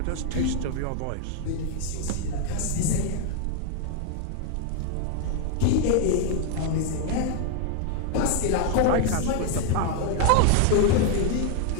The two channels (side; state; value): both; different; correlation 0.00